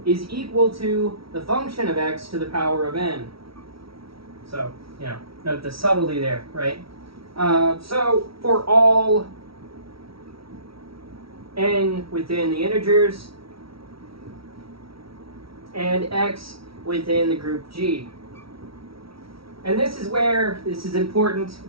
is equal to the function of X to the power of n. So, note the subtlety there, right? So, for all n within the integers and X within the group G. And this is important,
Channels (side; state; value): left; late; 0.75 ms